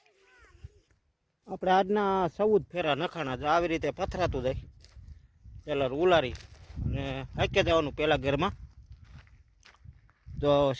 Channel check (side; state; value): both; identical; correlation 1.00